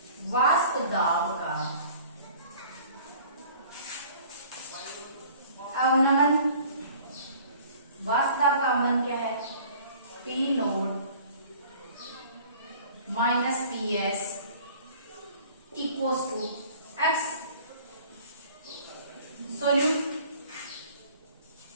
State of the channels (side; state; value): both; inverted; correlation -0.49